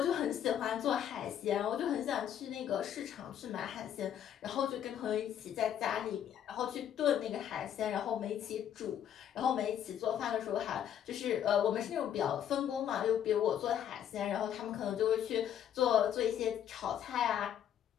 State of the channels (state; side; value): quieter; right; 9.8 dB